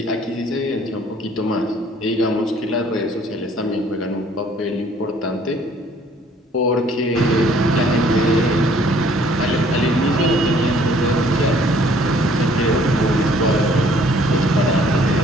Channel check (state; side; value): normal; both; correlation 0.59